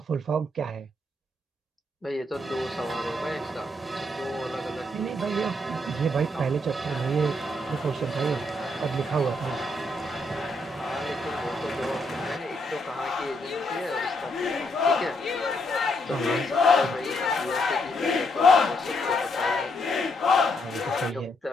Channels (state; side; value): normal; both; correlation 0.75